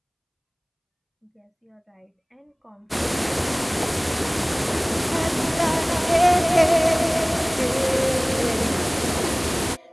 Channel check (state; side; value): identical; both; correlation 1.00